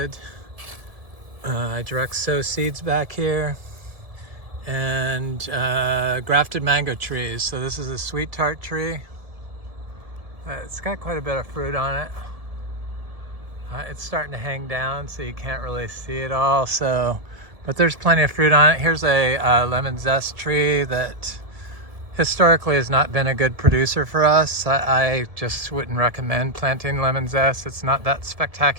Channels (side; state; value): left; late; 1.7 ms